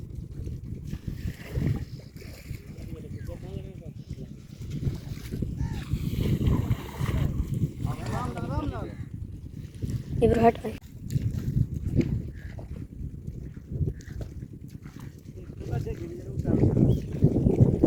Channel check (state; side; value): identical; both; correlation 1.00